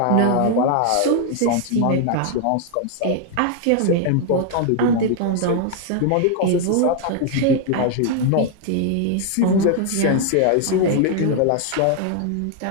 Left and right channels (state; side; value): different; both; correlation 0.00